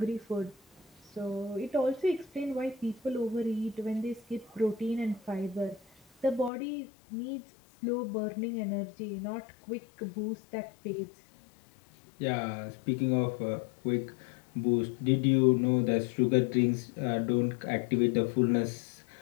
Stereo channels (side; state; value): right; drops out; at 6.5 s